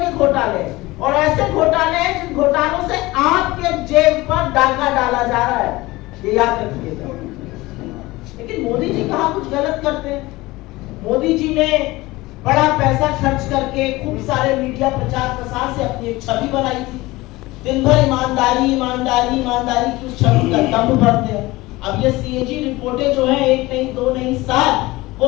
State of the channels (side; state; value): right; quieter; 20.1 dB